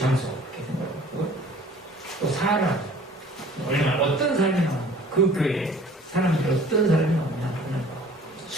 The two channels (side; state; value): both; normal; correlation 0.50